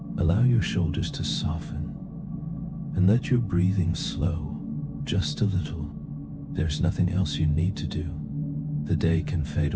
Allow your shoulders to soften and let your breathing slow just a little. There's nothing else you need to do. The day can fade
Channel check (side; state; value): both; identical; correlation 1.00